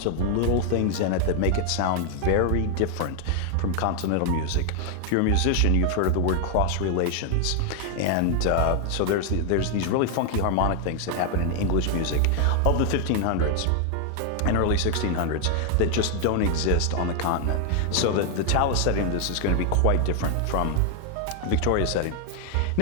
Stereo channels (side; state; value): both; different; correlation 0.00